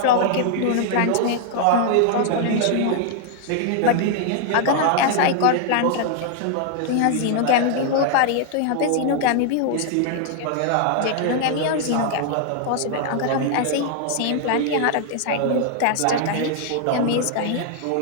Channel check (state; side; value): different; both; correlation 0.00